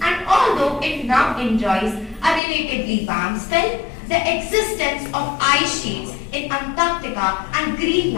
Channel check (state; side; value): drops out; right; at 2.4 s